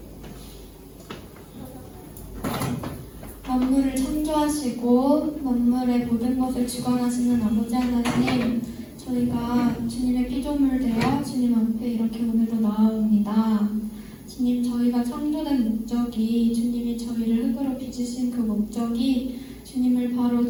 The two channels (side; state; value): both; identical; correlation 1.00